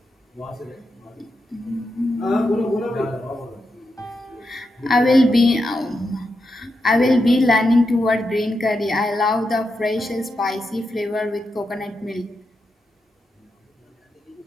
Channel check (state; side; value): normal; both; correlation 0.86